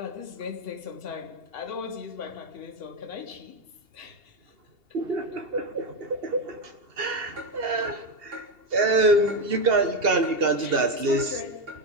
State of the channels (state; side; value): late; left; 2.8 ms